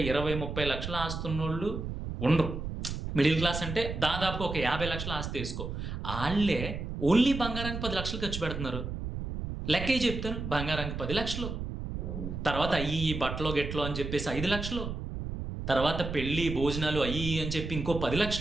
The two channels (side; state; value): right; noise; rumble, 5 dB below the sound